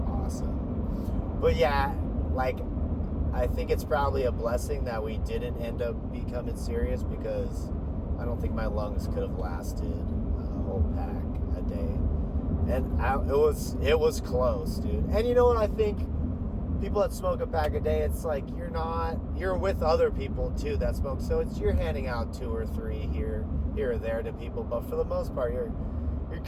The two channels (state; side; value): identical; both; correlation 1.00